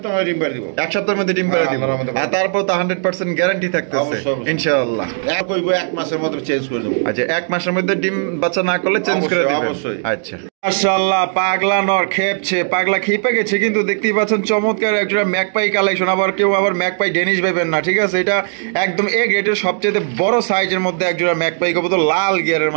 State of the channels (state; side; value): silent; left; digital silence